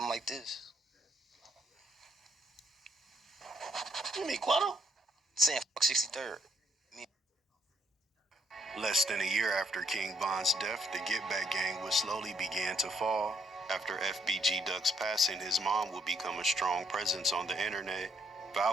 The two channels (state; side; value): normal; both; correlation 0.71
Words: like this. You mean Quando? Saying fuck 63rd. Less than a year after King Von's death, the Get Back gang would slowly begin to fall. After FBG Duck's passing, his mom would become a strong presence on the internet.